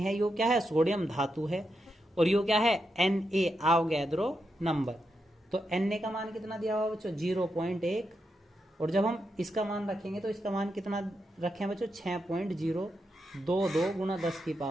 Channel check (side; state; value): both; normal; correlation 0.85